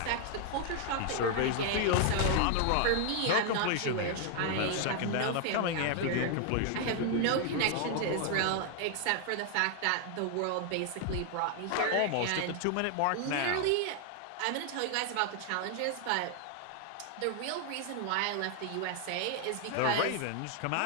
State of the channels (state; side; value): different; both; correlation 0.00